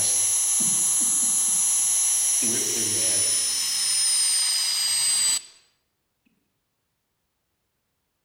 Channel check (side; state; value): both; identical; correlation 1.00